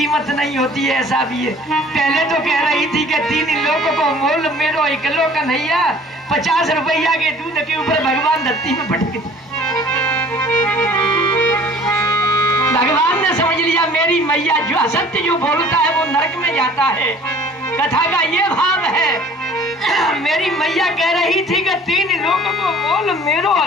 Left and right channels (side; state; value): both; normal; correlation 0.50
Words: नहीं होती है, ऐसा भी है। पहले तो कह रही थी कि 3 लोगों को मोल मेरो इकलो कन्हैया, 50 रुपया के दूध के ऊपर भगवान धरती में पटक दिया। भगवान ने समझ लिया मेरी मैया जो असत्य जो बोलता है वो नरक में जाता है। कथा का ये भाव है, मेरी मैया कह रही थी कि 3 लोगों को मोल मेरो